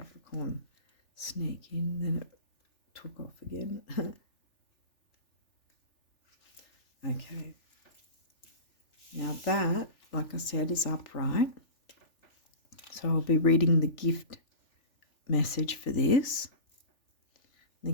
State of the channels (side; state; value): right; late; 3.4 ms